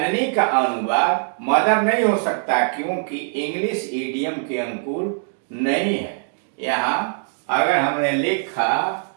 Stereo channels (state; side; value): silent; left; digital silence